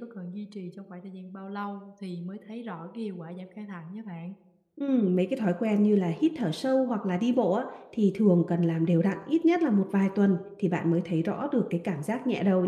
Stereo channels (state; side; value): identical; both; correlation 1.00